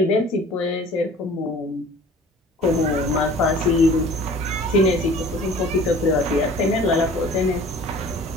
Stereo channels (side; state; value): both; normal; correlation 0.47